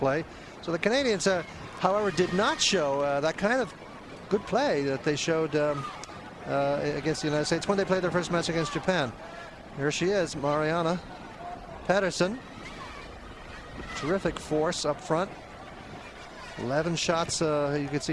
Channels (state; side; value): identical; both; correlation 1.00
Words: So the Canadians, however, did not show that kind of good play that they showed against the United States when they played their first match against Japan. Here she is, Mariana Pedersen. Terrific force up front. 11 shots, you can